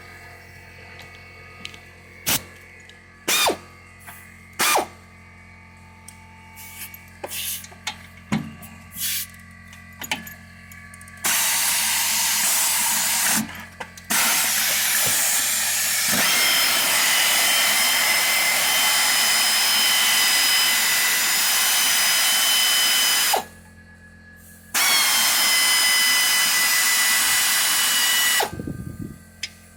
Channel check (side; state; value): both; identical; correlation 1.00